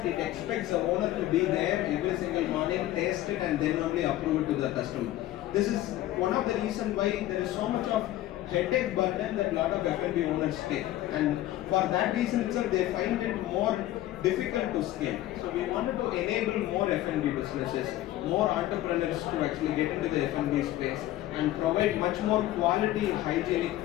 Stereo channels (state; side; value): quieter; right; 14.7 dB